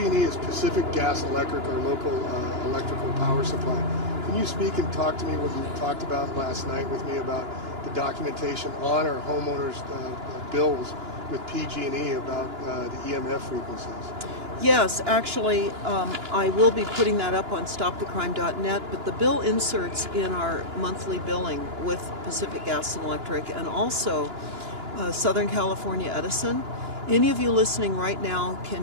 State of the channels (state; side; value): late; left; 2.9 ms